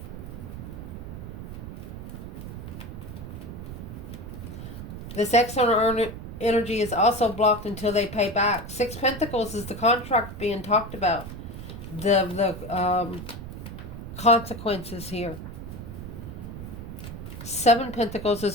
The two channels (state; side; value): noise; right; rumble, 9 dB below the sound